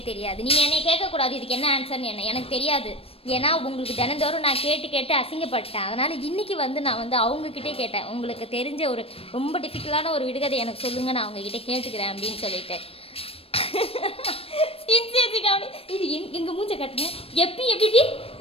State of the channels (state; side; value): late; right; 0.28 ms